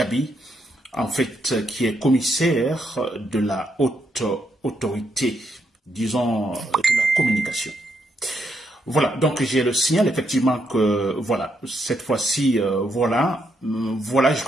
en fait, qui est commissaire de la haute autorité, disons, de la communication. Voilà, donc j'ai le signal effectivement que, voilà, cette fois-ci, voilà, je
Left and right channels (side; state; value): both; normal; correlation 0.78